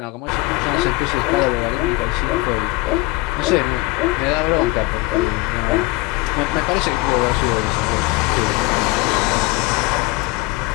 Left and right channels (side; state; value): right; quieter; 22.1 dB